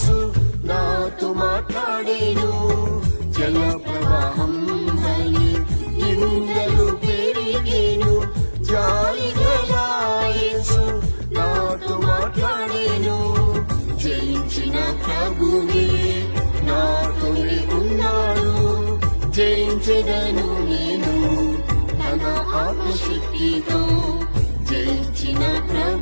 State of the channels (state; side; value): inverted; both; correlation -1.00